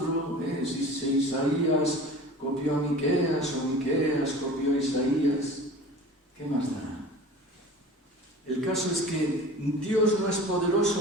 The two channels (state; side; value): normal; both; correlation 0.39